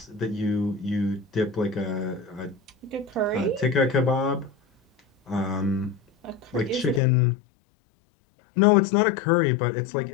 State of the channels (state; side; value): drops out; right; at 7.0 s